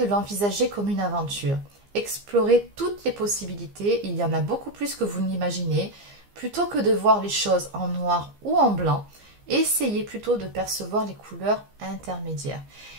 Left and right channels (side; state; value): left; late; 15 ms